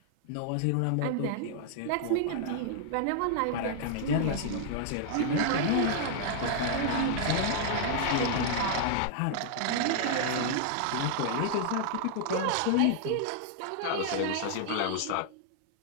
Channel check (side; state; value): both; different; correlation -0.01